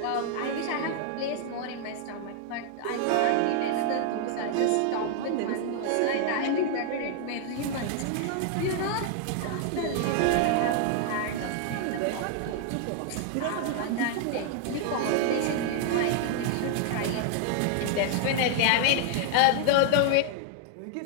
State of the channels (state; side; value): different; both; correlation 0.00